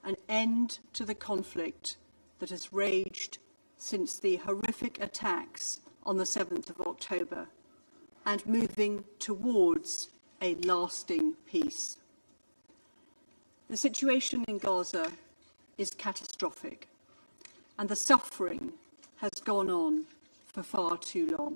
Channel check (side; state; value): both; inverted; correlation -1.00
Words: an end to the conflict that has raged since the horrific attacks on the 7th of October and moving towards a lasting peace. The situation in Gaza is catastrophic, and the suffering has gone on for far too